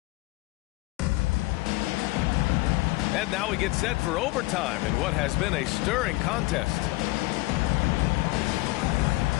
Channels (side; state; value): right; quieter; 20.8 dB